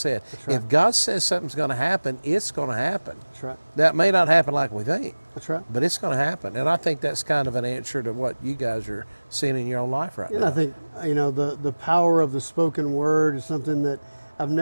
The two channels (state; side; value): inverted; both; correlation -1.00